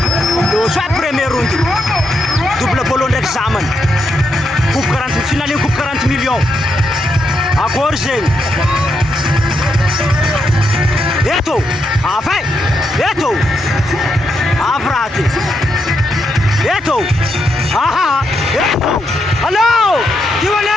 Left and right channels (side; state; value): both; normal; correlation 0.81